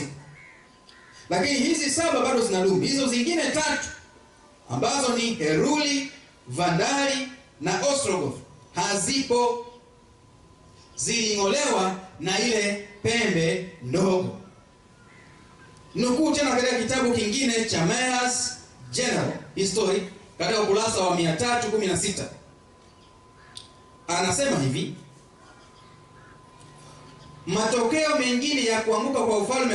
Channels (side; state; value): both; identical; correlation 1.00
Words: Lakini hizi 7 bado zinadumu. Hizo zingine 3 ambazo ni Heruli, Vandali na Ostrogoth hazipo, ziling'olewa na ile pembe ndogo. Nukuu tena katika kitabu kingine cha Mayer's General History katika ukurasa wa 316. Anasema hivi: matokeo mengine ya kuanguka kwa ufalme